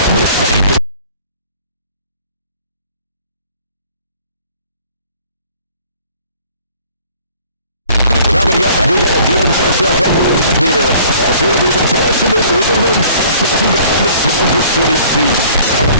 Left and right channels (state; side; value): inverted; both; correlation -0.53